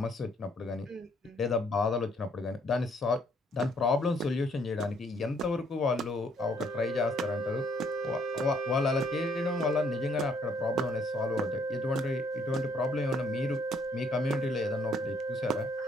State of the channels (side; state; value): both; normal; correlation 0.66